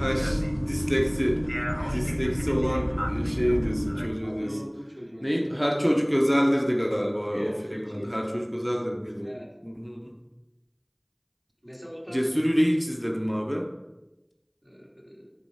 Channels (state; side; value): identical; both; correlation 1.00